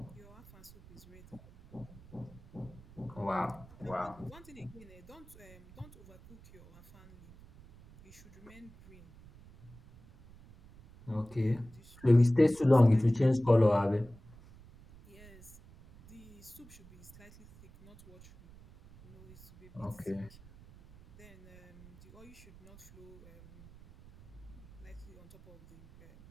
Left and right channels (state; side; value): noise; right; rumble, 21 dB below the sound